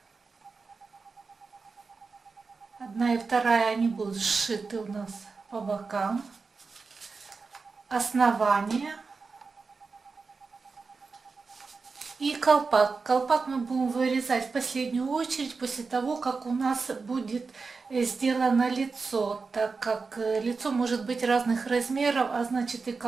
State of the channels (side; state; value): left; quieter; 4.5 dB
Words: Одна и вторая, они будут сшиты у нас по бокам. Основание и колпак. Колпак мы будем вырезать в последнюю очередь после того, как у нас будет сделано лицо, так как лицо может быть разных размеров, а значит и